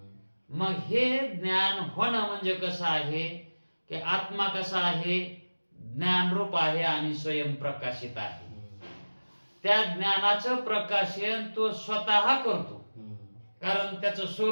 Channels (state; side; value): inverted; both; correlation -1.00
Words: मग हे ज्ञान होणं म्हणजे कसं आहे की आत्मा कसा आहे, ज्ञानरूप आहे आणि स्वयंप्रकाशित आहे. त्या ज्ञानाचं प्रकाशन तो स्वतः करतो, कारण त्याचं